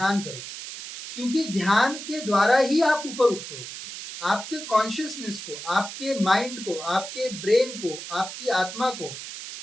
करो, क्योंकि ध्यान के द्वारा ही आप ऊपर उठते हो। आपके कॉन्शियसनेस को, आपके माइंड को, आपके ब्रेन को, आपकी आत्मा को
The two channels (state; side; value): noise; right; hiss, 10 dB below the sound